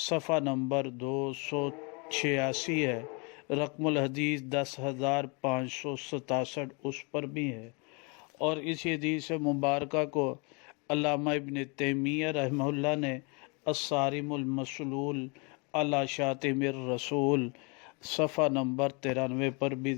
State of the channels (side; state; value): right; quieter; 31.9 dB